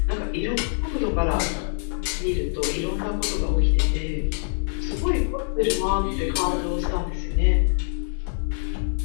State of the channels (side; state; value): right; silent; 60 dB below the other